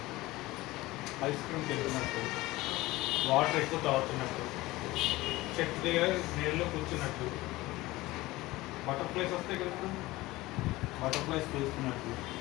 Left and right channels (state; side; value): quieter; right; 19.2 dB